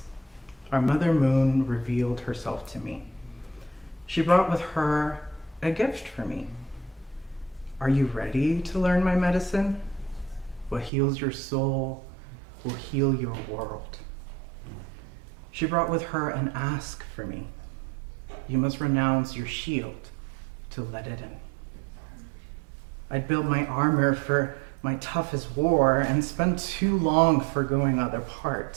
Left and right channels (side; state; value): left; drops out; at 10.9 s